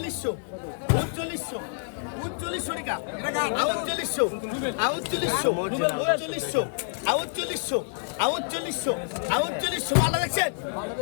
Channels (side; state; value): right; silent; 60 dB below the other